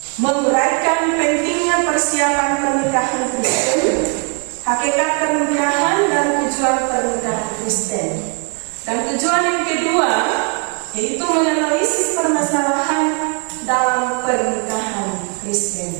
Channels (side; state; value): left; quieter; 36.8 dB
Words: Menguraikan pentingnya persiapan pernikahan Kristen, hakikat pernikahan dan tujuan pernikahan Kristen. Dan tujuan yang kedua yaitu menganalisis permasalahan dalam pernikahan